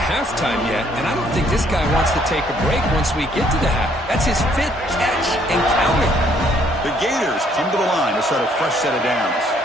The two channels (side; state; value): both; normal; correlation 0.65